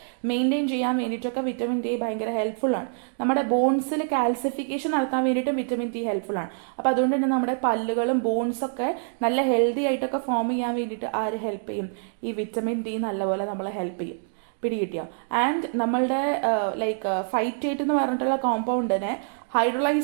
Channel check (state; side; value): silent; left; digital silence